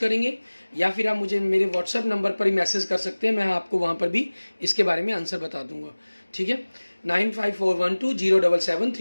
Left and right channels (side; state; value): both; inverted; correlation -1.00